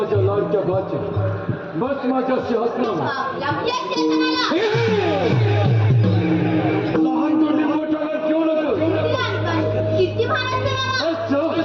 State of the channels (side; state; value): both; identical; correlation 1.00